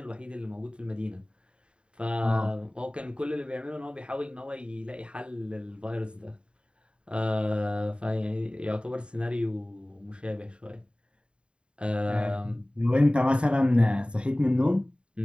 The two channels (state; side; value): late; left; 0.054 ms